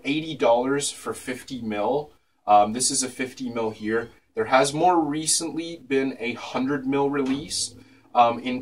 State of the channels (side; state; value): both; identical; correlation 1.00